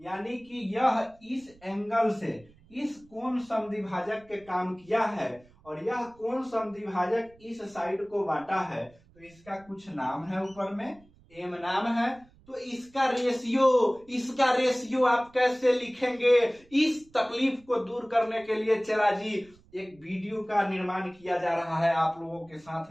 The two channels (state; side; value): noise; right; rumble, 28 dB below the sound